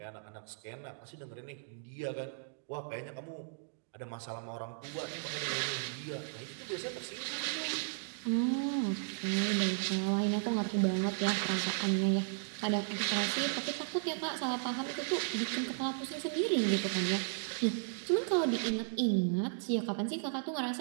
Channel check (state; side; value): silent; left; digital silence